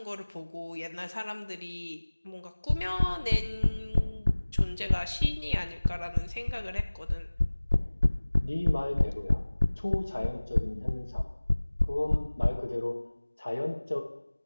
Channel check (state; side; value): inverted; both; correlation -1.00